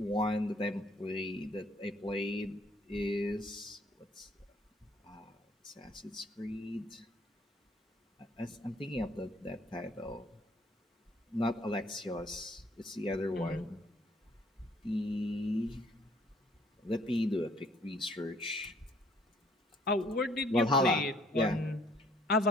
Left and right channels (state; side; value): normal; both; correlation 0.61